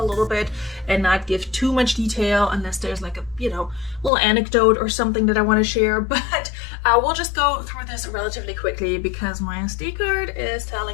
little bit and not give too much detail unless there's like a, little anecdote or something that I want to share. But we'll just go through this relatively quickly because my SD card is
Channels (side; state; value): right; drops out; at 4.1 s